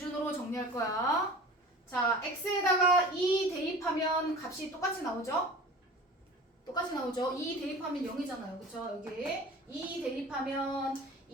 정리할 거야. 자, x에다가 2 대입하면 값이 똑같이 나오죠? 똑같이 나오죠? 2 대입하면 0이잖아요. 그쵸? 여기 2 대입하면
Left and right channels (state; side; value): normal; both; correlation 0.40